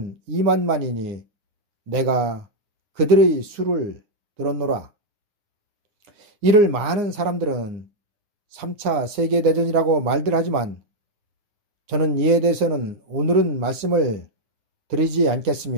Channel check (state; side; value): late; left; 9.7 ms